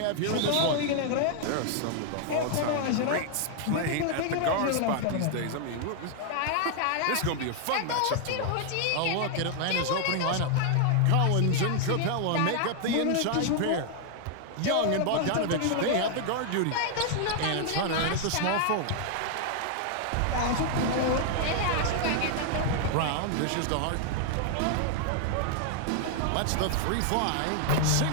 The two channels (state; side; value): different; both; correlation 0.00